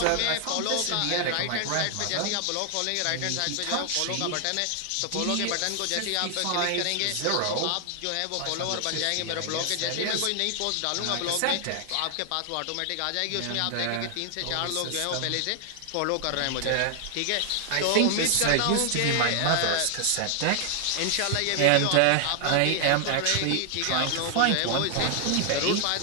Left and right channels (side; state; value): both; different; correlation 0.00